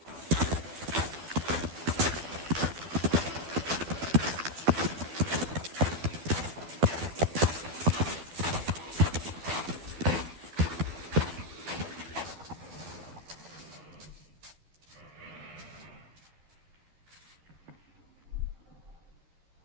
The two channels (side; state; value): left; late; 12 ms